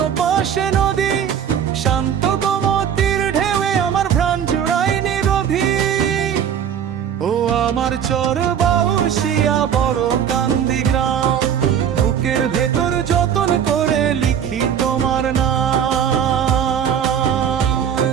পাশে নদী, শান্ত গোমতীর ঢেউয়ে আমার প্রাণ জুড়ায় নিরোধী। ও আমার চর বাউশিয়া বড় কান্দি গ্রাম, বুকের ভেতর যতন করে লিখি তোমার নাম।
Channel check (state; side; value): quieter; left; 8.7 dB